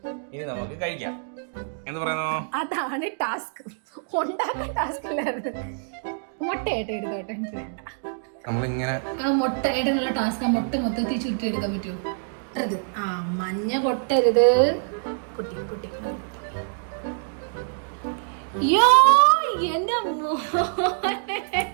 ഇനി നമുക്ക് കഴിക്കാം. എന്ത് പറയുന്നു? അതാണ് ടാസ്ക്, ഉണ്ടാക്കാൻ ടാസ്ക് അല്ലായിരുന്നു. മുട്ടയായിട്ട് എടുത്തോട്ടെ, നമ്മളിങ്ങനെ മുട്ടയായിട്ടുള്ള ടാസ്ക്. മുട്ട മൊത്തത്തിൽ ചുറ്റി എടുക്കാൻ പറ്റുമോ? ആ മഞ്ഞ പൊട്ടരുത് കുട്ടി കുട്ടി. യോ എന്റെ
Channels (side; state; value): left; silent; digital silence